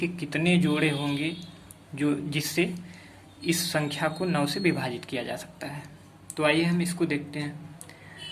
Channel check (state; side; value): identical; both; correlation 1.00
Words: कितने जोड़े होंगे जो जिससे इस संख्या को 9 से विभाजित किया जा सकता है। तो आइए हम इसको देखते हैं।